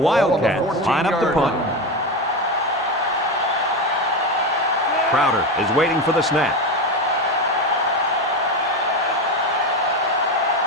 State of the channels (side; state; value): both; normal; correlation 0.17